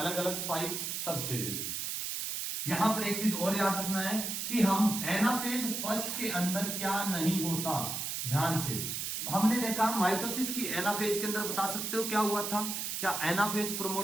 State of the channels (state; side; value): noise; right; hiss, 3 dB below the sound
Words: अलग 5 सब स्टेजेस। यहां पर एक चीज और याद रखना है कि हम एनाफेज फर्स्ट के अंदर क्या नहीं होता, ध्यान से। हमने देखा माइटोसिस की एनाफेज के अंदर, बता सकते हो क्या हुआ था, क्या एनाफेज